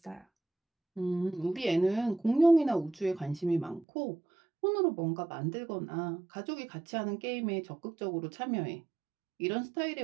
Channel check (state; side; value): drops out; left; at 3.9 s